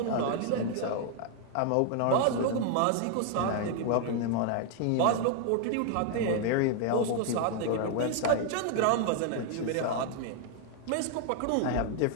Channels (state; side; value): different; both; correlation 0.00